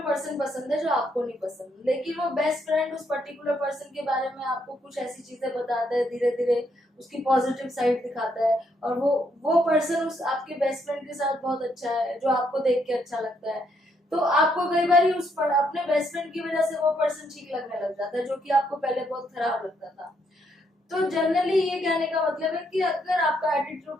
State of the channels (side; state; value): both; normal; correlation 0.74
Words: पर्सन पसंद है जो आपको नहीं पसंद, लेकिन वो बेस्ट फ्रेंड उस पर्टिकुलर पर्सन के बारे में आपको कुछ ऐसी चीजें बताता है, धीरे धीरे उसकी पॉजिटिव साइड दिखाता है, और वो पर्सन उस आपके बेस्ट फ्रेंड के साथ बहुत अच्छा है, जो आपको देख के अच्छा लगता है। तो आपको कई बार अपने बेस्ट फ्रेंड की वजह से वो पर्सन ठीक लगने लग जाता है, जो कि आपको पहले बहुत खराब लगता था। तो जनरली ये कहने का मतलब है कि अगर आपका